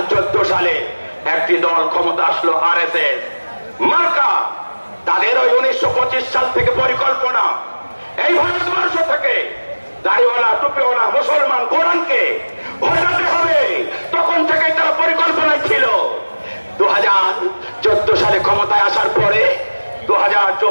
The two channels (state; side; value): inverted; both; correlation -1.00